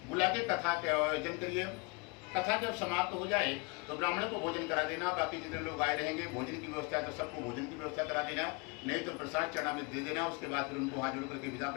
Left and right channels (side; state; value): right; quieter; 29.1 dB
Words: बुला के कथा का आयोजन करिए। कथा जब समाप्त हो जाए तो ब्राह्मण को भोजन करा देना। बाकी जितने लोग आए रहेंगे, भोजन की व्यवस्था है तो सबको भोजन की व्यवस्था करा देना, नहीं तो प्रसाद चरणामृत दे देना। उसके बाद फिर उनको हाथ जोड़ करके विदा